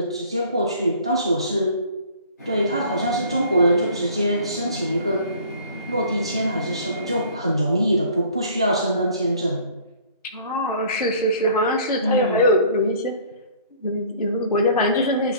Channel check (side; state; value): both; inverted; correlation -0.52